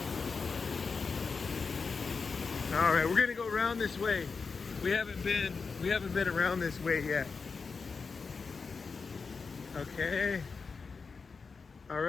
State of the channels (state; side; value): quieter; right; 4.9 dB